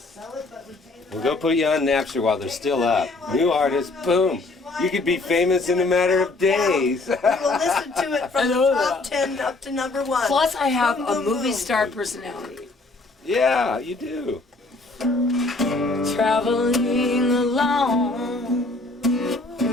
it, but retain the We'll go put you on Napster while they're still up. New artist, boom. You could be famous in a matter of days. We will listen to it from the top 10 up to number 1. Plus, I have a movie star personality. Yeah, you do. Traveling alone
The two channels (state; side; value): quieter; right; 3.2 dB